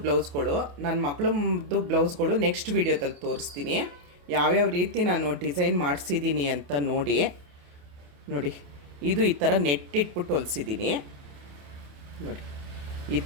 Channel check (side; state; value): left; late; 28 ms